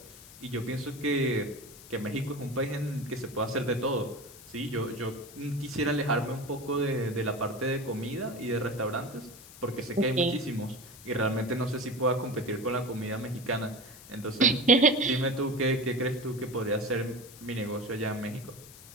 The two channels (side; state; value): left; noise; hiss, 18 dB below the sound